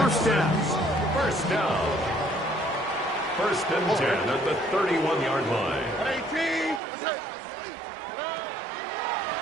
down. First down. First and 10 at the 31-yard line.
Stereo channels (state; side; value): drops out; left; at 6.8 s